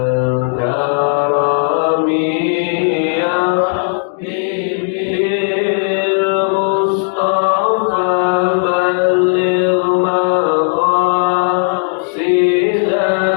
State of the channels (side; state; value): right; silent; digital silence